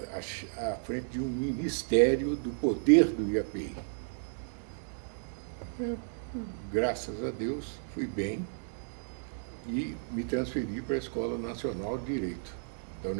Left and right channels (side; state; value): left; silent; digital silence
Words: à frente de um ministério do poder do IAPI. Graças a Deus, fui bem e me transferi para a Escola Nacional de Direito, da